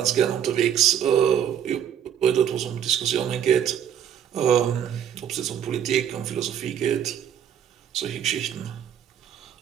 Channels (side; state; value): left; quieter; 9.3 dB